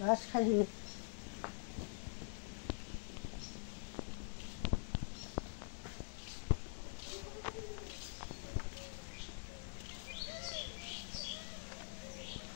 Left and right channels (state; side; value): silent; right; digital silence